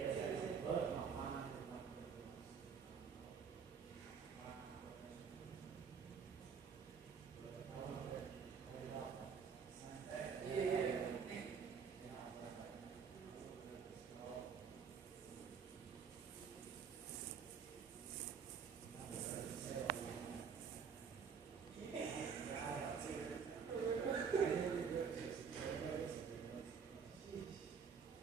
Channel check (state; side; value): quieter; left; 6.4 dB